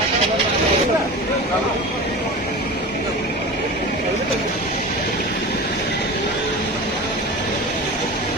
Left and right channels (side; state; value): both; normal; correlation 0.31